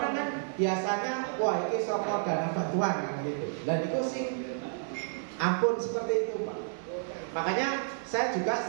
kan biasanya wah ini sokor dana bantuan kan gitu. Dan itu sih ampun seperti itu Pak. Makanya saya juga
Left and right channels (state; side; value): silent; left; 57 dB below the other